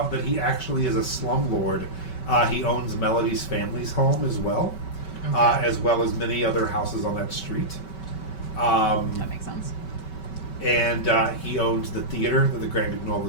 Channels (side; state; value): right; late; 5.2 ms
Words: that he actually is a slumlord. He owns Melody's family's home as well as many other houses on that street. That makes sense. And he owns the theater that the Grand Guignol